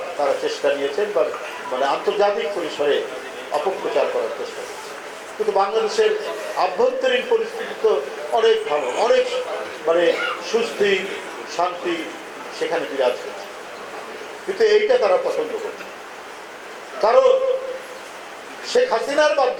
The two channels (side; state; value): both; identical; correlation 1.00